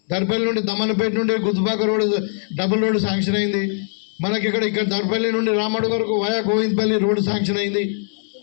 దర్పల్లి నుండి దమ్మనపేట నుండి గుత్తుపాక రోడ్డు డబుల్ రోడ్డు శాంక్షన్ అయింది. మనకి ఇక్కడ దర్పల్లి నుండి రామడు వరకు వయా గోవిందపల్లి రోడ్డు శాంక్షన్ అయింది.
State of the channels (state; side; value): silent; right; 59 dB below the other